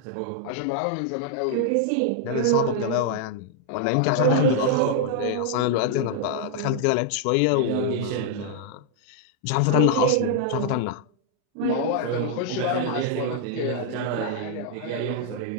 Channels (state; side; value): different; both; correlation 0.00